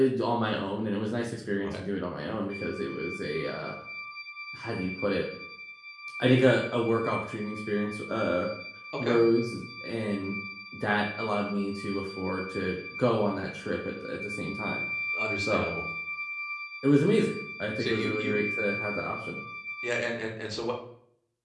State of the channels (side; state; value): both; identical; correlation 1.00